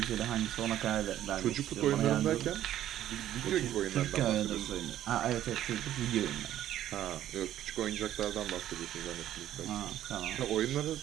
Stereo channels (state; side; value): quieter; left; 12.2 dB